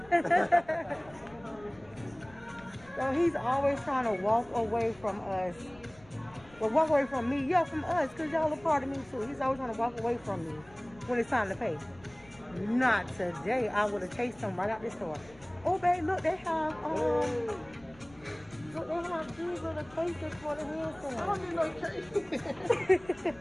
So he's always trying to walk away from us. Well, walk away from me. Yeah, from us, because y'all are part of me too. He's always trying to walk away from me when it's time to pay. Not today. I would have chased him right out the store. Oh, babe, look, they have, look, they have these little cases for the hand I don't need no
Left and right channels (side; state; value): left; noise; rumble, 24 dB below the sound